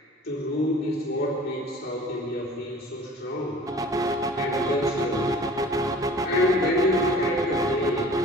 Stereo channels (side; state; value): both; normal; correlation 0.45